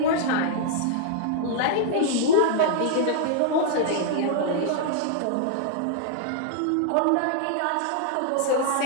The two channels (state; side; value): different; both; correlation -0.01